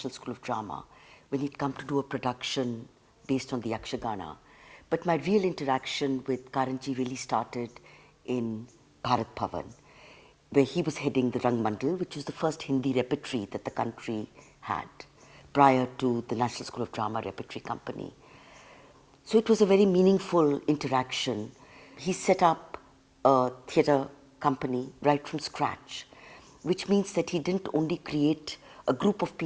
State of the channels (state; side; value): identical; both; correlation 1.00